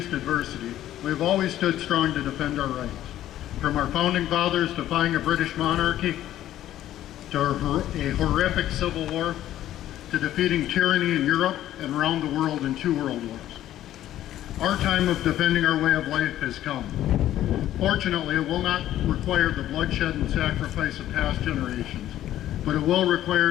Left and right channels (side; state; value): right; quieter; 12.8 dB